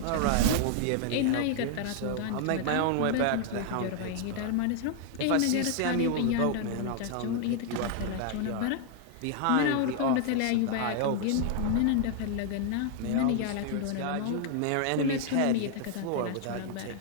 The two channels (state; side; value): different; both; correlation 0.00